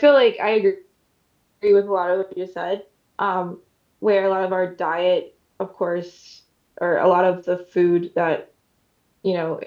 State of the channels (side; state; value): both; identical; correlation 1.00